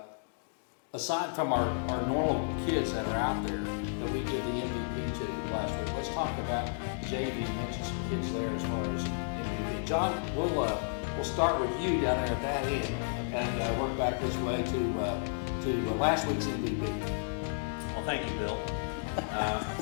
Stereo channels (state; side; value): silent; right; digital silence